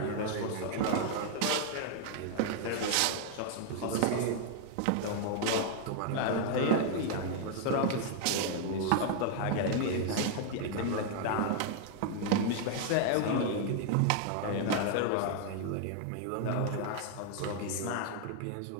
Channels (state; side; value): different; both; correlation 0.00